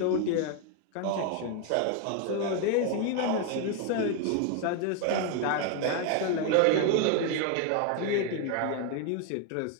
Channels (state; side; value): different; both; correlation 0.01